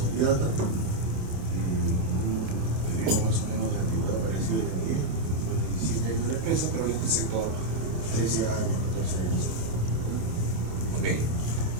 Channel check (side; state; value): left; late; 27 ms